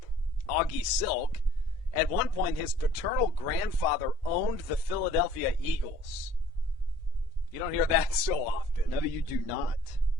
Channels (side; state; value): both; normal; correlation 0.55